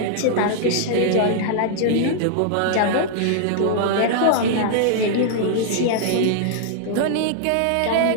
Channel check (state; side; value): different; both; correlation -0.01